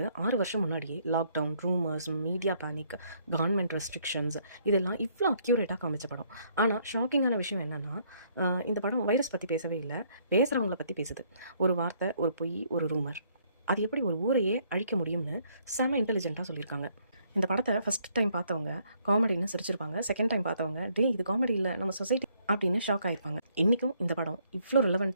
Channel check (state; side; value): inverted; both; correlation -0.68